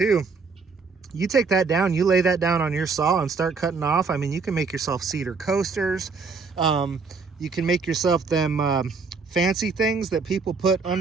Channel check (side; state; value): left; quieter; 4.8 dB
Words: you take that down, you lay that down on your saw and start cutting off. I mean, you can make yourself cedar coasters. You can make yourself them fancy things that people put